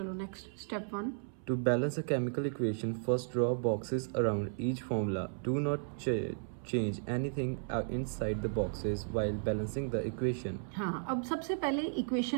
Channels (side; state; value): left; silent; 55 dB below the other